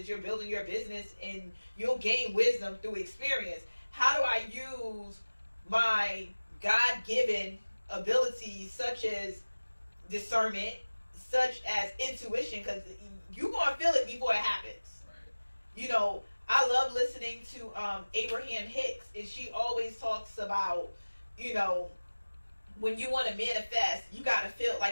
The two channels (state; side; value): inverted; both; correlation -1.00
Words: you're building your business, and you'll gain wisdom through experience. How do I use my God-given abilities such as discernment, such as intuition, because you're going to feel it before it happens. Right. You know, I love listening to Abraham Hicks, and she always talks about, you know, when you want to manifest, you got to feel,